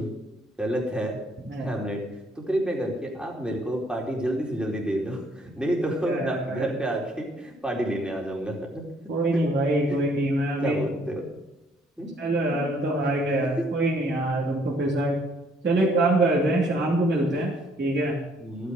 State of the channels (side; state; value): both; normal; correlation 0.65